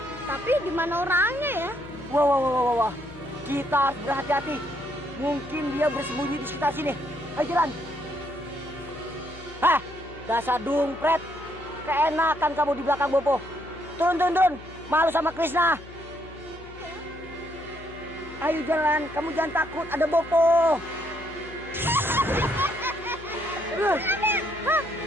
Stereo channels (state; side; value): noise; left; hum, 18 dB below the sound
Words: Tapi di mana orangnya ya? Wah. Kita harus berhati-hati. Mungkin dia bersembunyi di sekitar sini. Ayo jalan. Hah, dasar dungpret. Keenakan kamu di belakang Bopo. Turun. Malu sama Krishna. Ayo jalan, kamu jangan takut, ada Bopo.